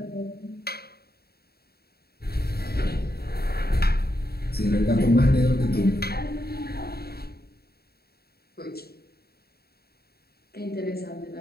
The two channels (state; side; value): late; right; 0.45 ms